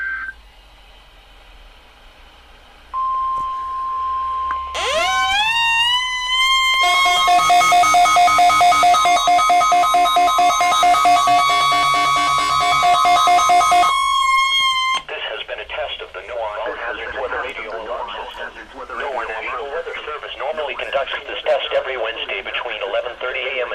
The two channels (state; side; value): identical; both; correlation 1.00